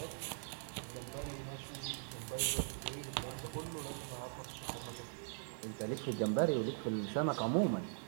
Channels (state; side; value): silent; left; 50 dB below the other